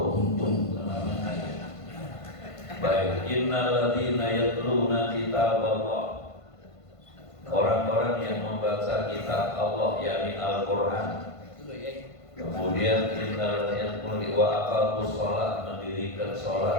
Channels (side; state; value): right; late; 1.5 ms